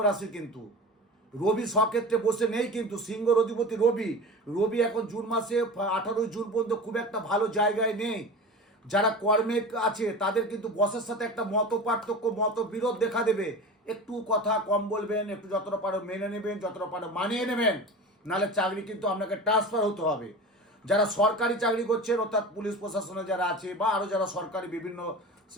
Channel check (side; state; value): both; normal; correlation 0.33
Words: কিন্তু রবি স্বক্ষেত্রে বসে নেই, কিন্তু সিংহর অধিপতি রবি এখন জুন মাসে 18 জুন পর্যন্ত খুব একটা ভালো জায়গায় নেই। যারা কর্মে আছে তাদের কিন্তু বসের সাথে একটা মত পার্থক্য, মতবিরোধ দেখা দেবে। একটু কথা কম বলবেন, একটু যতটা পারো মেনে নেবেন, যতটা পারো মানিয়ে নেবেন, নাহলে চাকরি কিন্তু আপনাকে ট্রান্সফার হতে হবে। যারা সরকারি চাকরি করছেন, অর্থাৎ পুলিশ প্রশাসনে যারা আছে বা আরও যারা সরকারি বিভিন্ন